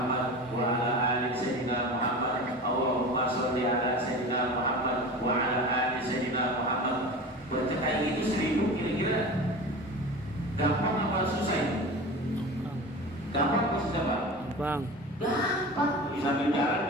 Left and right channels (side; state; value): both; normal; correlation 0.33